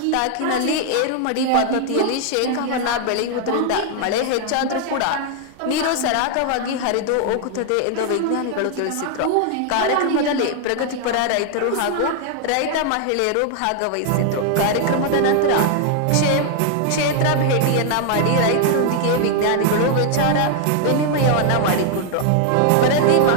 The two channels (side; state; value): both; different; correlation 0.00